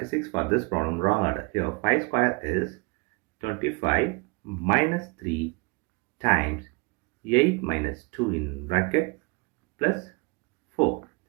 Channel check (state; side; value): quieter; left; 28.9 dB